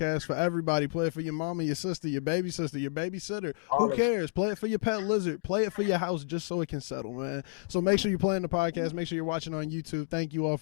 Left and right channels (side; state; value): right; silent; digital silence